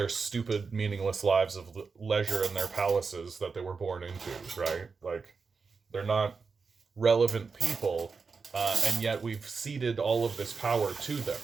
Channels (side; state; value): left; quieter; 4.9 dB